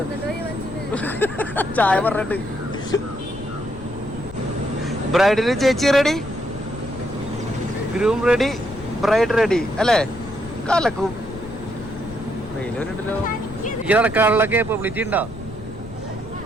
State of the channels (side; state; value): left; noise; rumble, 16 dB below the sound